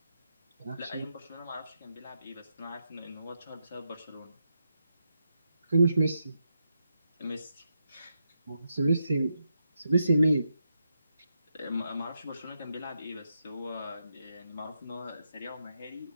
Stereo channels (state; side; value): inverted; both; correlation -0.83